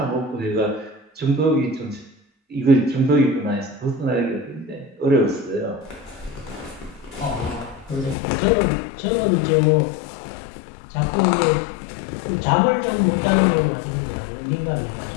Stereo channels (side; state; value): right; drops out; at 8.2 s